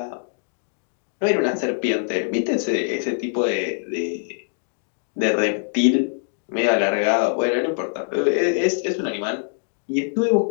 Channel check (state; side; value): silent; right; digital silence